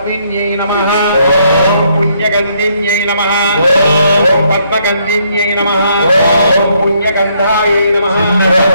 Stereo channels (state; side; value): inverted; both; correlation -0.71